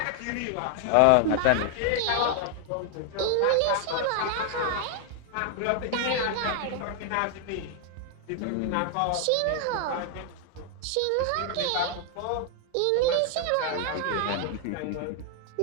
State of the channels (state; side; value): different; both; correlation 0.00